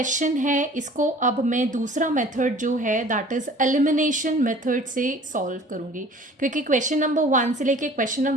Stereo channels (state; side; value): normal; both; correlation 0.48